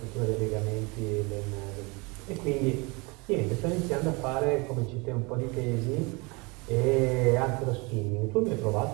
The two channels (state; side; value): quieter; left; 27.9 dB